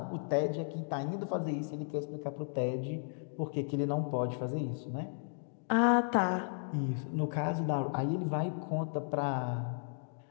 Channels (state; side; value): silent; right; digital silence